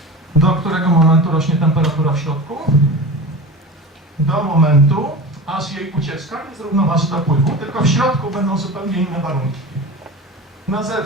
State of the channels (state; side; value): normal; both; correlation 0.31